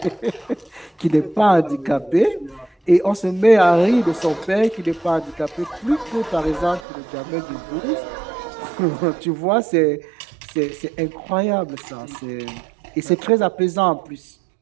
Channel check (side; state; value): left; drops out; at 6.8 s